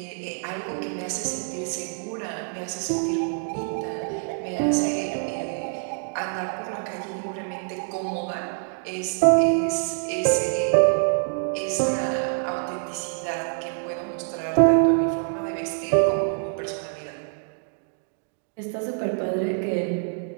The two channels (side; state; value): left; silent; 61 dB below the other